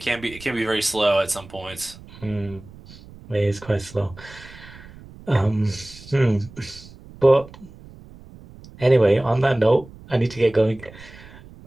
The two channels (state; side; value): noise; right; rumble, 19 dB below the sound